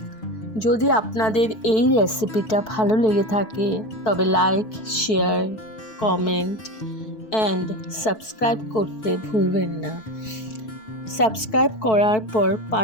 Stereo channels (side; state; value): right; late; 4.6 ms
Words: যদি আপনাদের এই রেসিপিটা ভালো লেগে থাকে তবে like, share, comment and subscribe করতে ভুলবেন না। সাবস্ক্রাইব করার পর